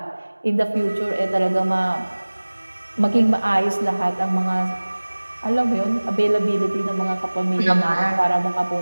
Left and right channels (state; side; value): inverted; both; correlation -1.00